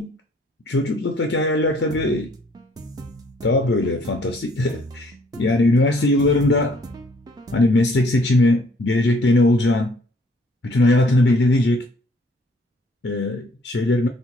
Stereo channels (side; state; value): both; normal; correlation 0.62